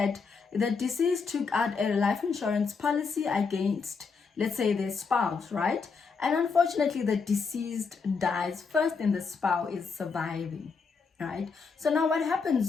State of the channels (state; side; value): quieter; right; 5.1 dB